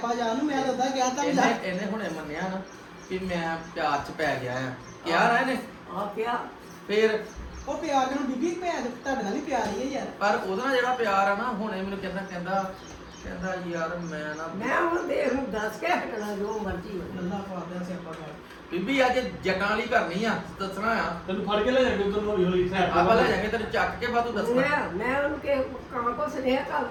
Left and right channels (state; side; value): identical; both; correlation 1.00